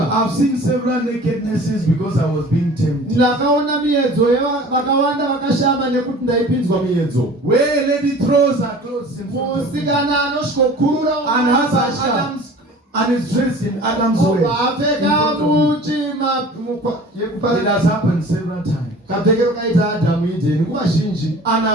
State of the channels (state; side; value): normal; both; correlation 0.44